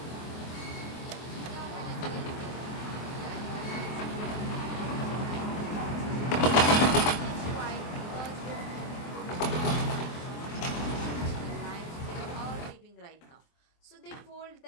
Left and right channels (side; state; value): right; late; 24 ms